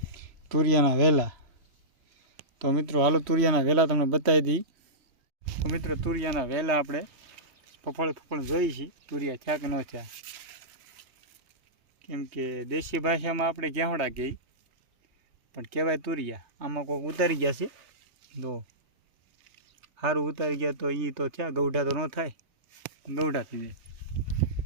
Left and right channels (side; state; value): left; late; 3.2 ms